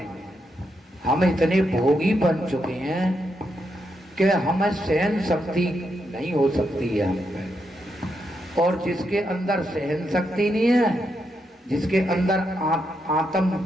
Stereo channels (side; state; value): both; normal; correlation 0.82